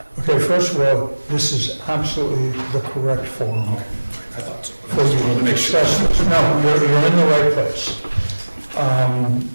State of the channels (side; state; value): both; inverted; correlation -1.00